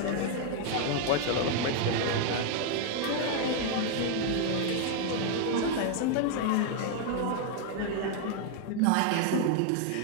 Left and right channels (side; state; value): both; different; correlation 0.00